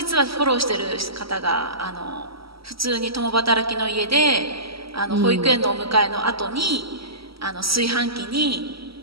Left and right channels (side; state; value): left; late; 0.75 ms